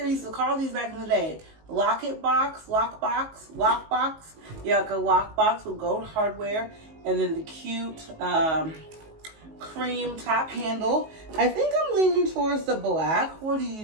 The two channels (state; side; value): late; left; 19 ms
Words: used to call these back in the day. Locket box, lockbox. Yeah, like a lockbox with gold hardware. And then the cute cream top handle. I think I'm leaning towards the black. What do